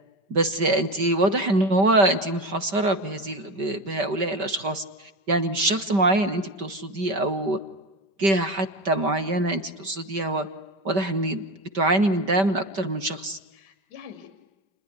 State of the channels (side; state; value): left; late; 5.1 ms